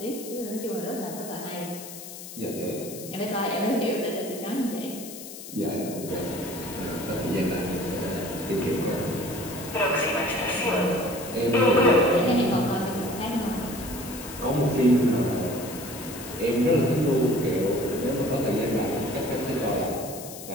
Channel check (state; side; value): noise; left; hiss, 12 dB below the sound